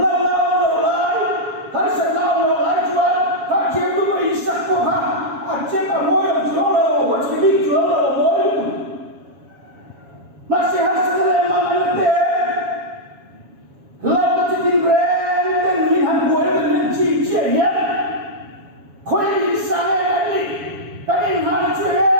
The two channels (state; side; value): late; left; 7.2 ms